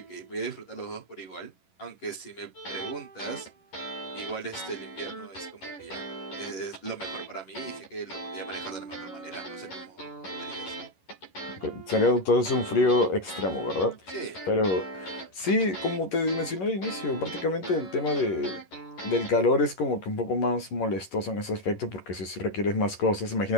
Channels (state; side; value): late; right; 11 ms